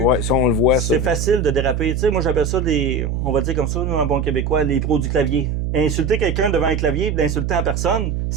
ouais, ça, on le voit. C'est facile de déraper. Tu sais, moi, j'appelle ça on va dire comme ça, nous, en bon québécois, les pros du clavier. Insulter quelqu'un devant un clavier et l'insulter en personne,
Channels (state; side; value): noise; right; hum, 1 dB below the sound